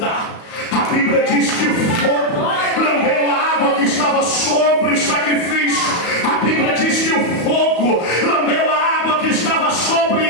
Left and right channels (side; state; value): right; late; 34 ms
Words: A Bíblia diz que o fogo lambeu a água que estava sobre o sacrifício. A Bíblia diz que o fogo lambeu a água que estava